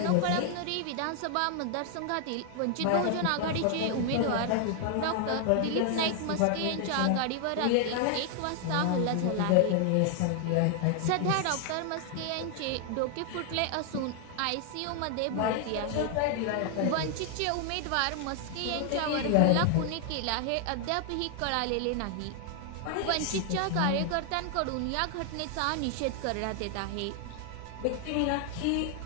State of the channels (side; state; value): both; different; correlation 0.00